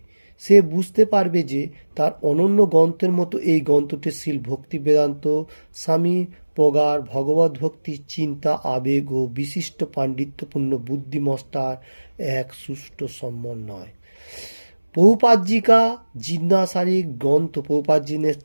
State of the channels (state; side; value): inverted; both; correlation -1.00